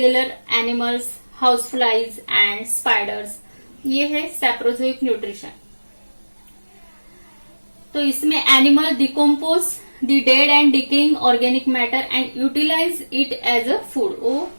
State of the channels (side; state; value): both; inverted; correlation -1.00